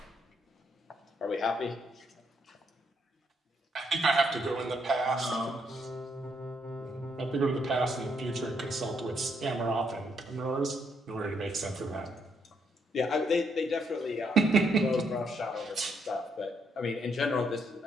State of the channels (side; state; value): both; normal; correlation 0.74